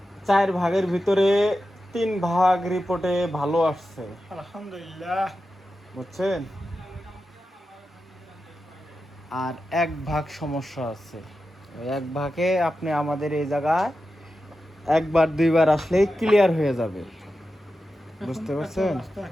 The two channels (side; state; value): both; normal; correlation 0.91